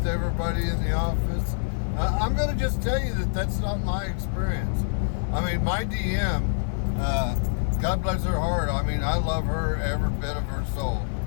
everybody in the office. I'm going to just tell you that that's not my experience. I mean, my DM, God bless her heart. I mean, I love her every bit of her soul.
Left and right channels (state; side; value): silent; right; digital silence